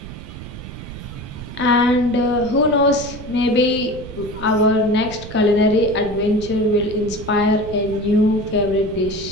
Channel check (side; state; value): right; noise; rumble, 12 dB below the sound